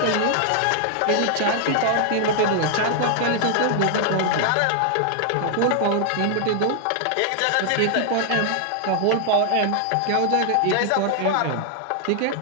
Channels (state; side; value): different; both; correlation 0.00